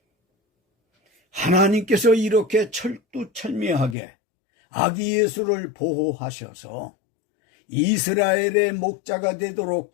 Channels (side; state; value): right; drops out; at 4.0 s